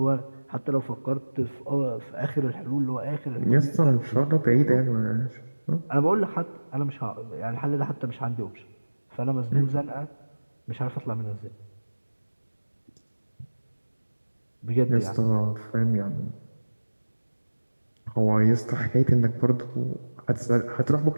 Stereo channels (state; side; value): inverted; both; correlation -1.00